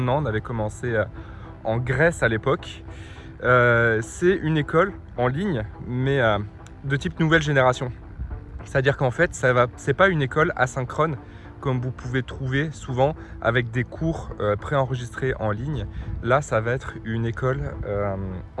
an. On avait commencé en Grèce à l'époque. C'est une école en ligne, mais de type nouvelle génération. C'est-à-dire qu'en fait, c'est pas une école asynchrone comme vous pouvez trouver souvent avec des cours préenregistrés en ligne. Là, ça va être une école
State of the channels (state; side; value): identical; both; correlation 1.00